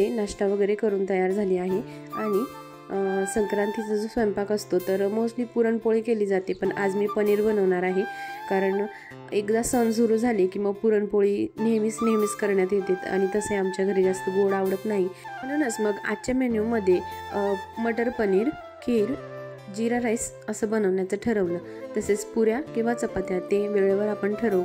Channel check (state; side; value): identical; both; correlation 1.00